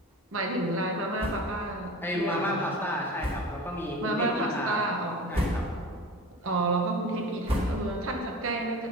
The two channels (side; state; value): both; normal; correlation 0.35